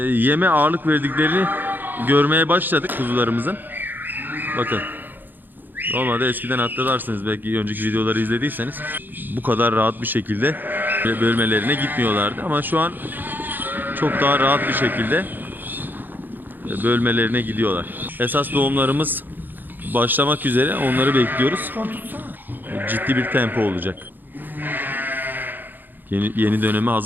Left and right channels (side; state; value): left; late; 0.089 ms